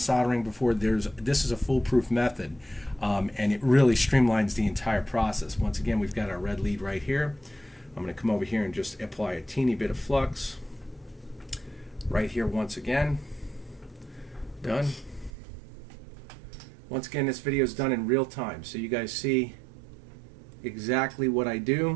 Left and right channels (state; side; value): drops out; left; at 15.3 s